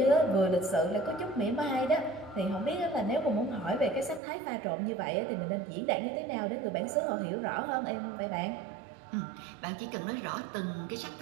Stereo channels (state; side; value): drops out; left; at 4.2 s